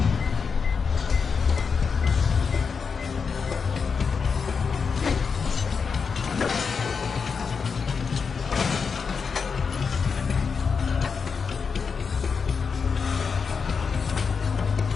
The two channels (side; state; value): right; quieter; 5.6 dB